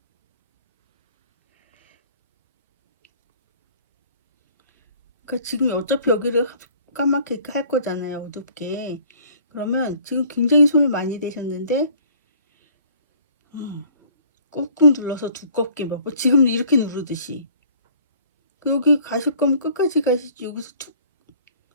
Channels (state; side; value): inverted; both; correlation -0.55